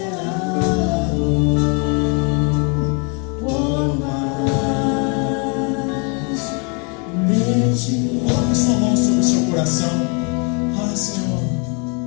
por mais de Ti. Coloque sua mão sobre o seu coração. Ah, Senhor,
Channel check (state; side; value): quieter; right; 35.6 dB